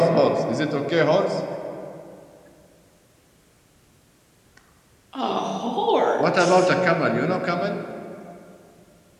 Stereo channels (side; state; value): both; identical; correlation 1.00